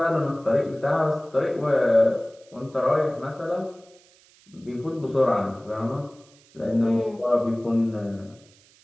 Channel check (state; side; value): noise; right; hiss, 29 dB below the sound